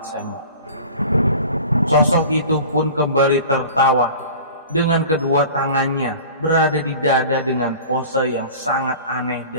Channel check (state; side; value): inverted; both; correlation -0.41